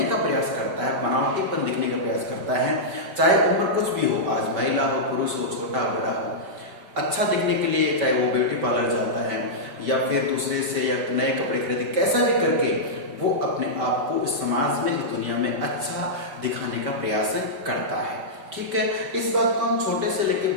का प्रयास करता है, बनावटीपन दिखने का प्रयास करता है, चाहे उम्र कुछ भी हो, आज महिला हो, पुरुष हो, छोटा बड़ा हो, अच्छा दिखने के लिए चाहे वो ब्यूटी पार्लर जाता है या फिर दूसरे से या नए कपड़े खरीदे, कैसा भी करके वो अपने आप को इस समाज में, इस दुनिया में अच्छा दिखाने का प्रयास करता है। ठीक है, इस बात को हम छोटे से लेकर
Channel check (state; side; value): late; left; 5.2 ms